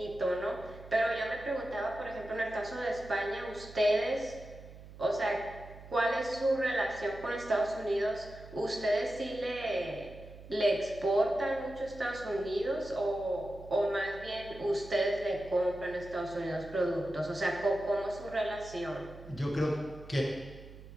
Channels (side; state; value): right; noise; hum, 16 dB below the sound